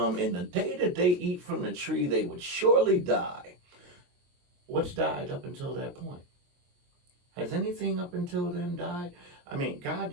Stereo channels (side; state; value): left; late; 23 ms